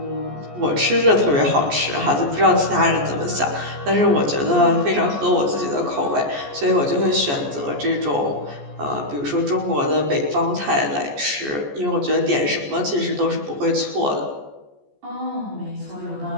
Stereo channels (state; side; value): late; left; 14 ms